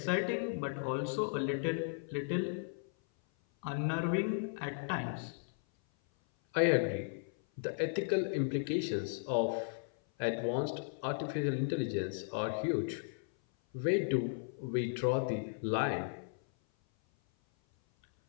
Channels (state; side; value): silent; right; 54 dB below the other